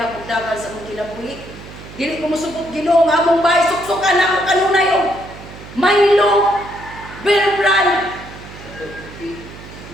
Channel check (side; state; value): right; noise; hum, 16 dB below the sound